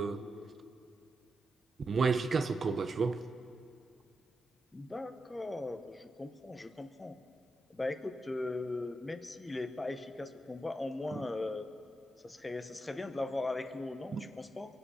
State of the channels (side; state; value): both; normal; correlation 0.87